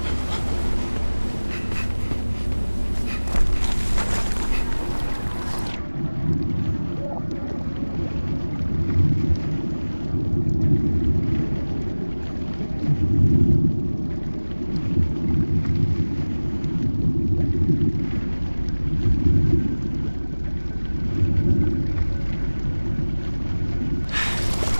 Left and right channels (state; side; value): inverted; both; correlation -1.00